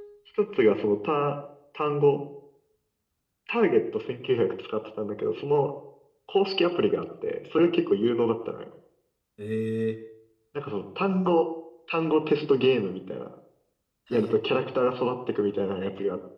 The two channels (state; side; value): identical; both; correlation 1.00